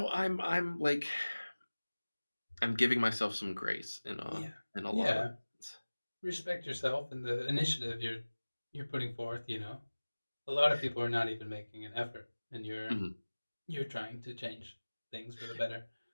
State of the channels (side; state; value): both; inverted; correlation -1.00